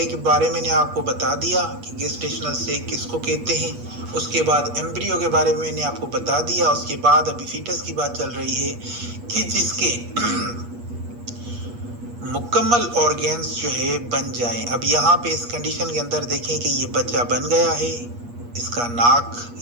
کے بارے میں نے آپ کو بتا دیا کہ گیسٹیشنل سیک کس کو کہتے ہیں. اس کے بعد ایمبریو کے بارے میں نے آپ کو بتا دیا. اس کے بعد ابھی فیٹس کی بات چل رہی ہے کہ جس کے مکمل آرگنز جو ہے بن جائیں. اب یہاں پہ اس کنڈیشن کے اندر دیکھیں کہ یہ بچہ بن گیا ہے. اس کا ناک،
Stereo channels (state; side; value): late; left; 8.4 ms